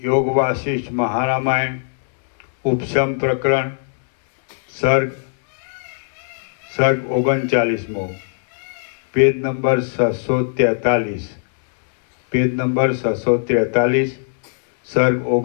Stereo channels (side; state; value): right; silent; digital silence